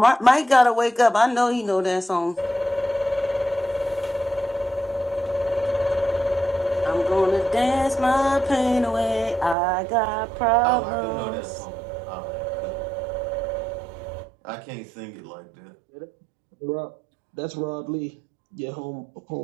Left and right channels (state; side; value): drops out; left; at 9.6 s